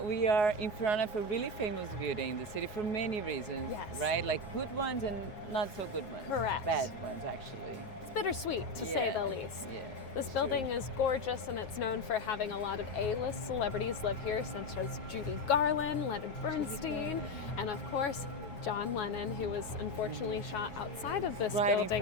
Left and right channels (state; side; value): late; right; 9.5 ms